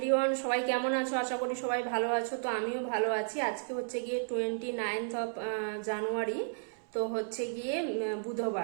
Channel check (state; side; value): silent; left; 56 dB below the other